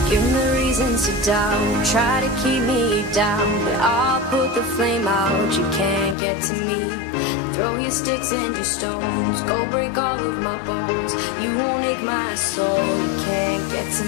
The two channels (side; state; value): right; drops out; at 6.2 s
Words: Give me reasons to doubt, try to keep me down, but I'll put the flame out, you can't get to me. Throw your sticks and your stones, go break all of my bones. You won't ache my soul, you can't get to